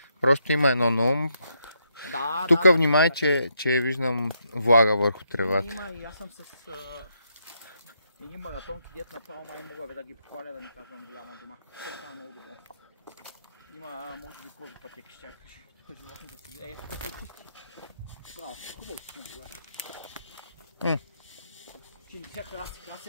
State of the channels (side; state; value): both; inverted; correlation -0.78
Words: Просто има едно на ум. Да, тук внимай, че виждам влага върху тревата. Има и аз съм с едни маратонки, дет направо май мога да ги похваля, да ни казвам голяма дума. Това е много добро. Има, може би, кози пътеки ще чакаш. Тук животните си гледа. Тук се пусти. Браво, хубаво си не